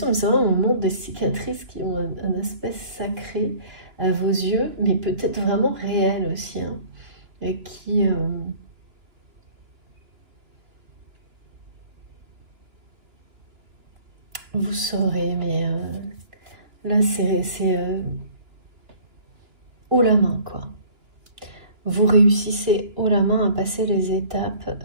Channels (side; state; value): left; late; 2.9 ms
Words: mais c'est vrai, on montre des cicatrices qui ont un aspect sacré à vos yeux, mais peut-être vraiment réel aussi, hein, et qui... vous saurez, mais là, c'est haut la main, quoi. Vous réussissez haut la main à passer les étapes